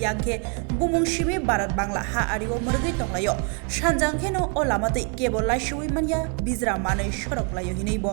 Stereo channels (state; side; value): quieter; left; 38.3 dB